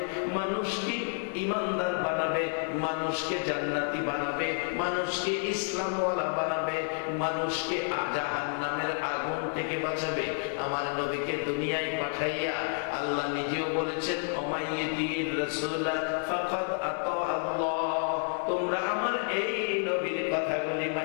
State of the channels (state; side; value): silent; right; 58 dB below the other